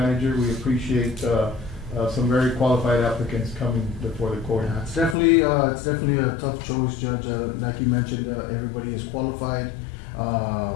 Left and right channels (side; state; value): right; drops out; at 5.2 s